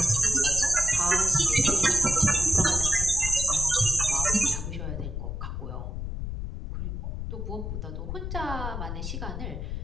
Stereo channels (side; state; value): left; noise; rumble, 5 dB below the sound